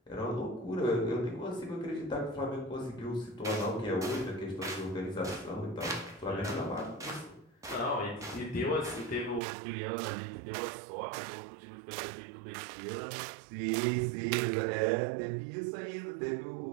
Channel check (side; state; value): left; drops out; at 9.4 s